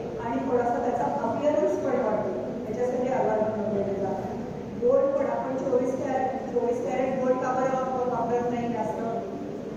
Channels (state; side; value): identical; both; correlation 1.00